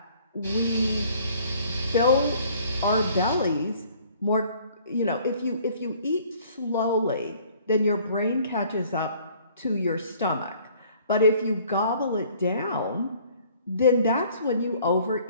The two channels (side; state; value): both; inverted; correlation -0.56